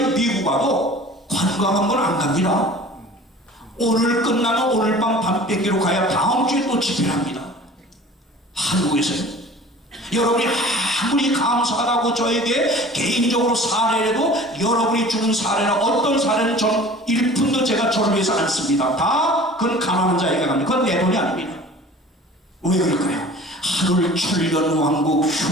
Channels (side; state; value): both; normal; correlation 0.44